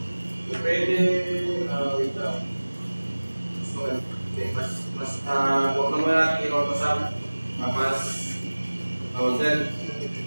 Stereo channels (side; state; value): both; inverted; correlation -1.00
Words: Pwede, wait lang. So, okay, huwag naman natin i-autosum,